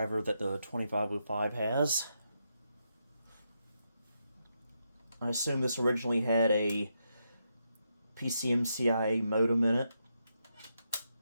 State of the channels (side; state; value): both; inverted; correlation -0.82